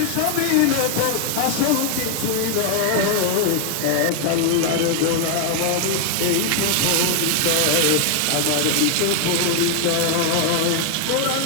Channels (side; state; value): both; different; correlation 0.00